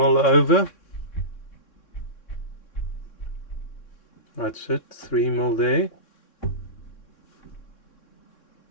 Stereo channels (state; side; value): late; right; 3.7 ms